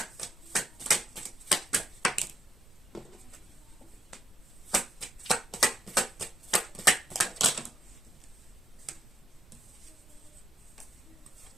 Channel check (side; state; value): both; normal; correlation 0.77